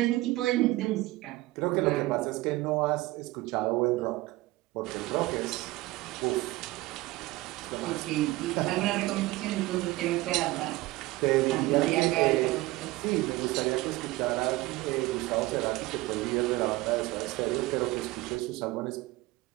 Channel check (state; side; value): quieter; left; 19.3 dB